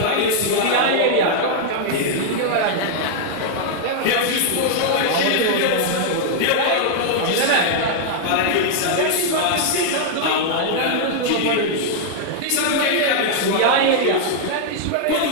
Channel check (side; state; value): both; different; correlation -0.01